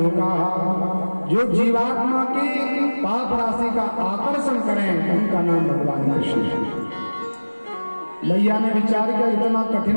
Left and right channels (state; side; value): inverted; both; correlation -1.00